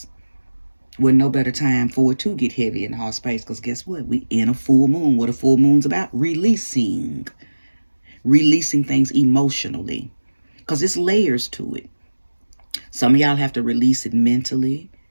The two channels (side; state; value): both; inverted; correlation -1.00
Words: Well, no better time for it to get heavy in the heart space, because guess what? We in a full moon. What a full moon's about? Releasing things emotionally, because it's layers to it. Some of y'all have to release it mentally,